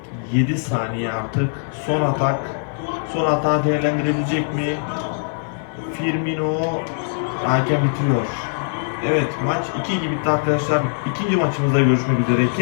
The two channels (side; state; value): right; silent; 62 dB below the other